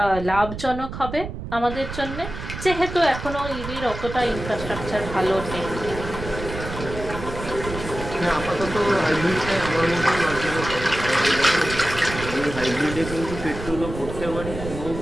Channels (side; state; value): right; noise; rumble, 9 dB below the sound